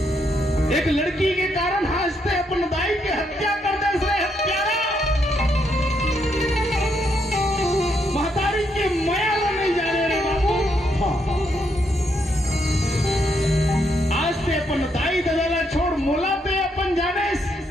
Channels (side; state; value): both; normal; correlation 0.76